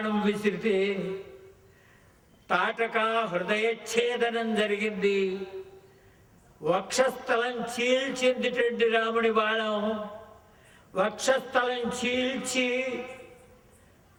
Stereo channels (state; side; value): identical; both; correlation 1.00